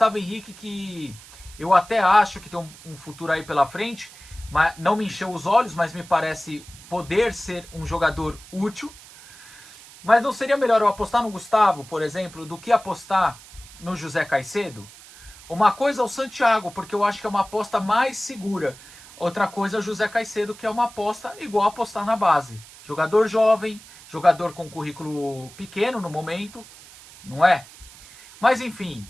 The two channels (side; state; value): right; noise; hiss, 20 dB below the sound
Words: Henrique, que eu até acho que tem um futuro aí pela frente, mas não me encheu os olhos, mas me parece poder ser um jogador útil. Mas não seria melhor eu apostar no Gustavo, por exemplo, do que apostar no José Caicedo? Uma coisa é o Santiago, porque eu acho que é uma aposta mais segura. Outra coisa é o José Caicedo, que é uma aposta igual a apostar na base. Jogador jovem, jogador com currículo pequeno no momento, não é? Mas enfim,